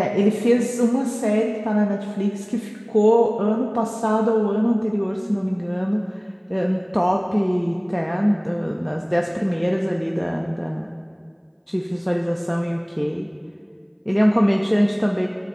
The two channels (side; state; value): both; identical; correlation 1.00